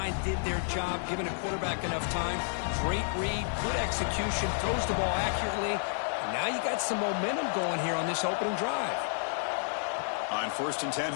did their job, giving a quarterback enough time. Great read, good execution, throws the ball accurately. And now you got some momentum going here on this opening drive. On 1st and 10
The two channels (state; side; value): silent; right; digital silence